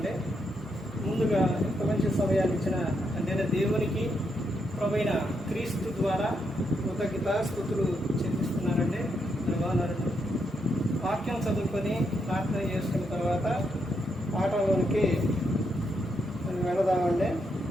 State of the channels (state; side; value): normal; both; correlation 0.80